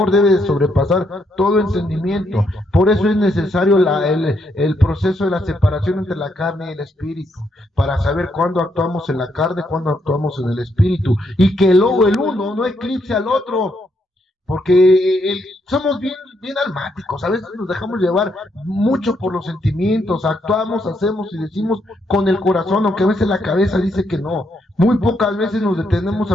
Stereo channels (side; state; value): both; normal; correlation 0.76